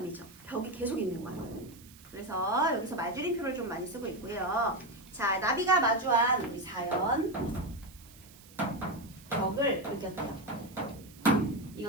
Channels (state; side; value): noise; right; hiss, 22 dB below the sound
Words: 벽이 계속 있는 거야. 그래서 여기서 말줄임표를 좀 많이 쓰고 있고요. 자, 나비가 마주한 우리 4연 벽을 느꼈대요.